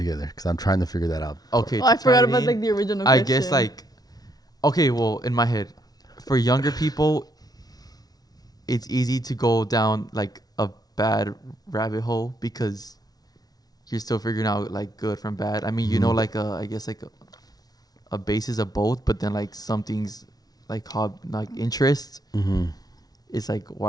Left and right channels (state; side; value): late; right; 0.19 ms